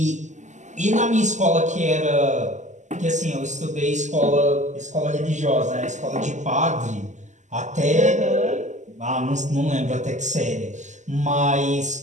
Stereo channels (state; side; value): late; left; 0.34 ms